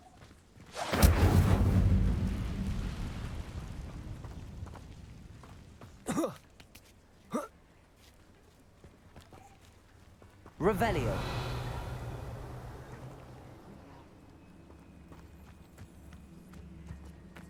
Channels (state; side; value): identical; both; correlation 1.00